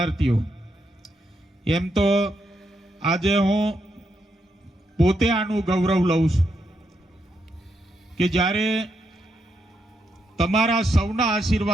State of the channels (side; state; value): both; normal; correlation 0.81